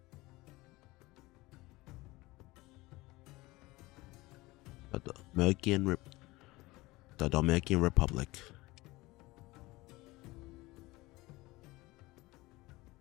The Dalmatian Republic.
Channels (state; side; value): quieter; right; 20.6 dB